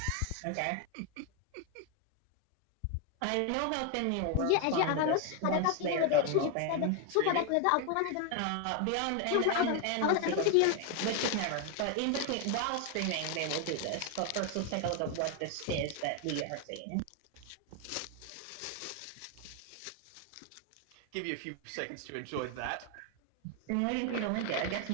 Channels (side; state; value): both; different; correlation 0.01